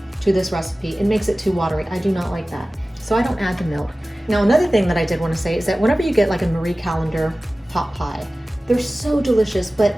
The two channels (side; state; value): both; normal; correlation 0.97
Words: to this recipe, it makes it too watery. I do not like that. So I don't add the milk. Now, another thing that I did want to say is that whenever you get like a Marie Callender pot pie, they're so delicious, but